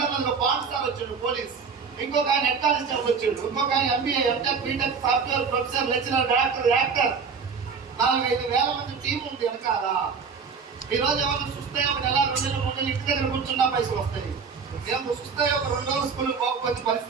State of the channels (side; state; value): left; quieter; 5.6 dB